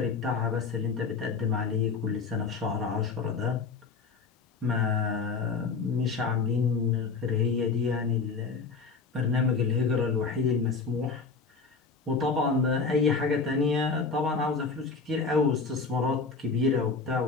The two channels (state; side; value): quieter; right; 4.8 dB